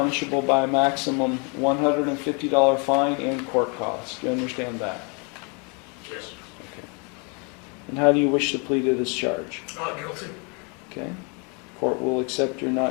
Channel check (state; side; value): quieter; right; 34.7 dB